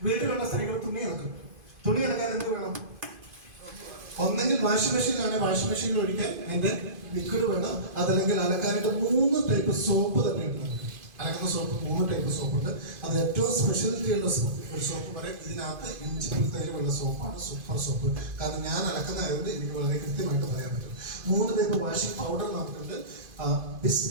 വീട്ടിലുള്ള സ്ത്രീകൾ തുണി ഇറക്കും. തുണി ഇറക്കാൻ എന്ത് വേണം? ഒന്നെങ്കിൽ വാഷിംഗ് മെഷീനിലാണെങ്കിൽ വാഷിംഗ് മെഷീനിൽ ഒഴിക്കാൻ അതിന്റെ ലിക്വിഡ് വേണം. അതല്ലെങ്കിൽ അലക്കാനായിട്ട് 3 ടൈപ്പ് സോപ്പ് തന്നെ ഉണ്ട് നമുക്ക്. അലക്കുന്ന സോപ്പ് 3 ടൈപ്പ് സോപ്പുണ്ട്. അത് ഏറ്റവും സ്പെഷ്യാലിറ്റി ഉള്ള ഒരു സോപ്പ് പറയും ഇതിനകത്ത് ഇഞ്ചിപ്പുൽത്തൈലമുള്ള സോപ്പാണ് സൂപ്പർ സോപ്പ്. കാരണം ഞാൻ അലക്കുന്നതായതുകൊണ്ട് എനിക്ക് വളരെ കൃത്യമായിട്ട് പറയാൻ പറ്റും. 3 ടൈപ്പ് വാഷിംഗ് പൗഡർ നമുക്കുണ്ട്. ബിസ്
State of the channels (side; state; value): left; late; 2.5 ms